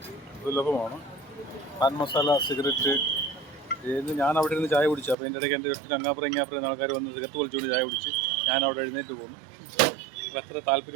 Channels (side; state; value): left; drops out; at 5.2 s